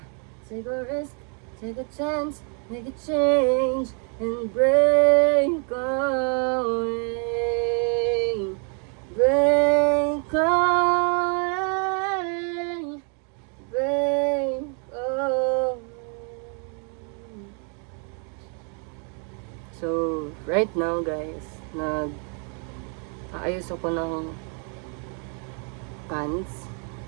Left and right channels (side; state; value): left; quieter; 39.7 dB